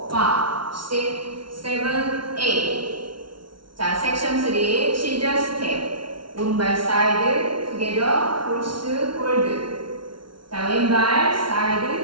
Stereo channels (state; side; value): late; left; 0.73 ms